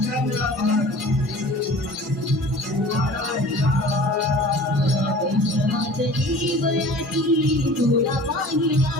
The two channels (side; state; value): both; normal; correlation 0.43